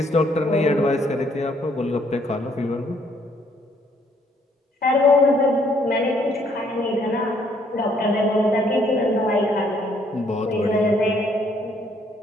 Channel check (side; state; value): both; normal; correlation 0.67